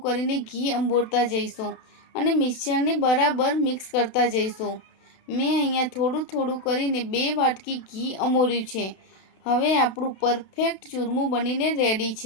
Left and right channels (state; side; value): late; right; 32 ms